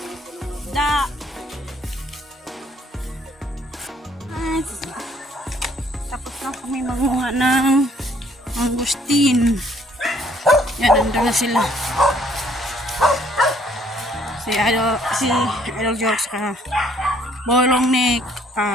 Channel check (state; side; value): normal; both; correlation 0.63